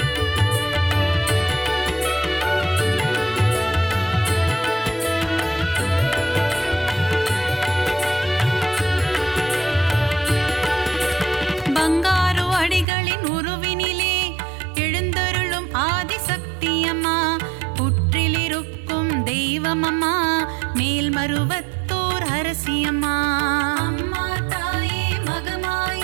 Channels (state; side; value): drops out; left; at 12.9 s